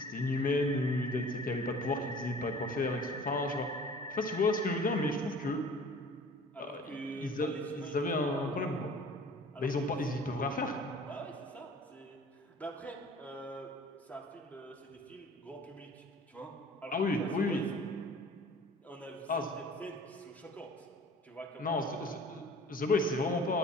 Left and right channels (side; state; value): both; normal; correlation 0.47